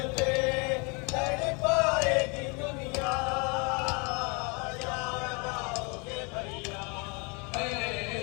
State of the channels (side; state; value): right; quieter; 31.5 dB